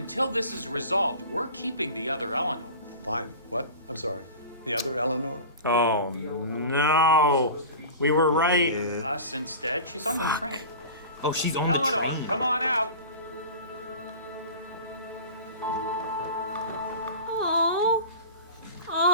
this is resolved, we're keeping the other Eleanor. Fine. What? I'm sorry. The other Eleanor? Oh, no. We were right. Us instead? She's on the train. Oh, she's on Eleanor, the train. come on out. Oh.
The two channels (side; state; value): both; inverted; correlation -0.35